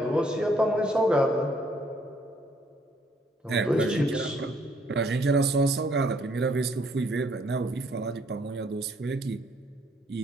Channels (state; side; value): normal; both; correlation 0.65